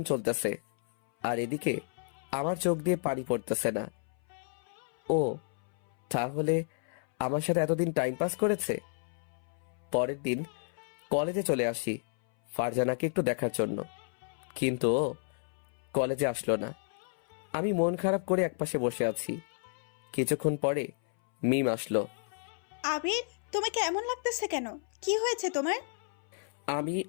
চলতেছে, আর এদিকে আমার চোখ দিয়ে পানি পড়তেছে না। ও তাহলে আমার সাথে এতদিন টাইম পাস করেছে। পরের দিন কলেজে চলে আসি ফারজানাকে একটু দেখার জন্য, কিন্তু ও কলেজে আসলো না। আমি মন খারাপ করে একপাশে বসে আছি। কিছুক্ষণ পরে মিম আসলো। আবির, তোমাকে এমন লাগতেছে কেন? কি হয়েছে তোমার? আমি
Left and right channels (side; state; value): right; silent; 57 dB below the other